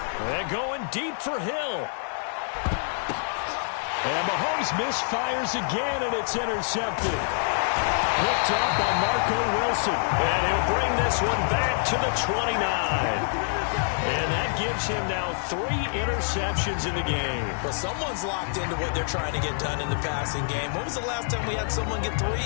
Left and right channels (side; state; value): right; silent; 57 dB below the other